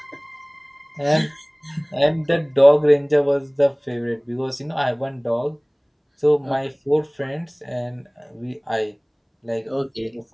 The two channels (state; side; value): identical; both; correlation 1.00